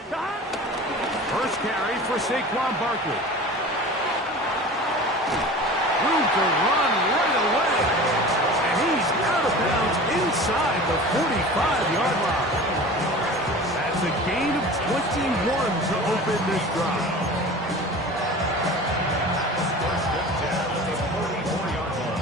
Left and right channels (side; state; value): both; normal; correlation 0.38